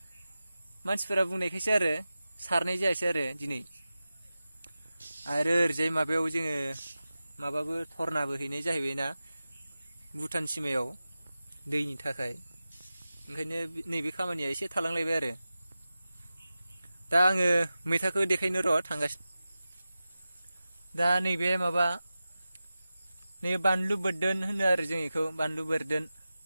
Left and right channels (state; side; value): inverted; both; correlation -0.94